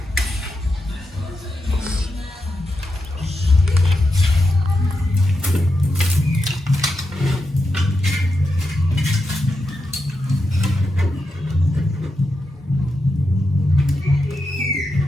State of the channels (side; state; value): both; normal; correlation 0.87